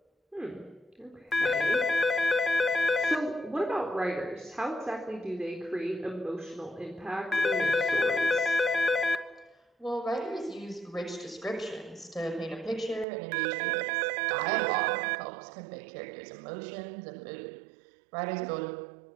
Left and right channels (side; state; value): left; drops out; at 13.1 s